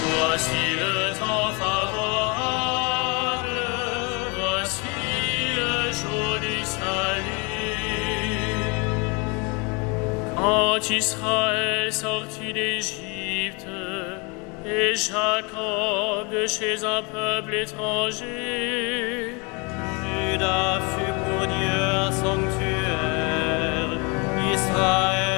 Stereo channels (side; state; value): right; quieter; 30.2 dB